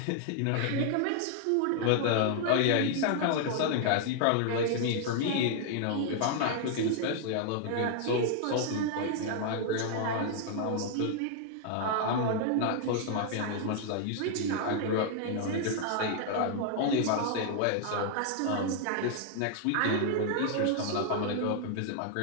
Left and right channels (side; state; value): both; different; correlation 0.00